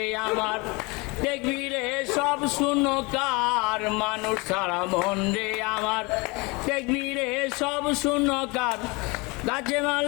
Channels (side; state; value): right; quieter; 26.7 dB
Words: আমার দেখবি রে সব শূন্যকার মানুষ সারা মন রে আমার দেখবি রে সব শূন্যকার গাছে